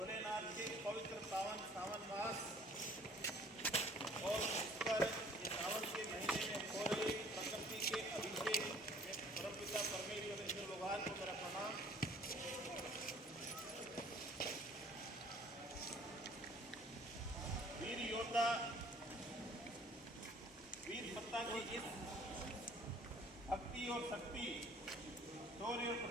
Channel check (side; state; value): both; normal; correlation 0.54